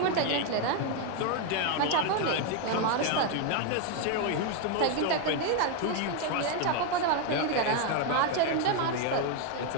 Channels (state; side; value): different; both; correlation 0.01